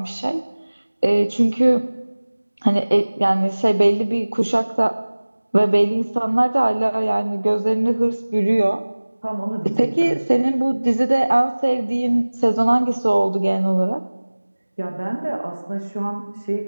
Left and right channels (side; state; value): both; inverted; correlation -1.00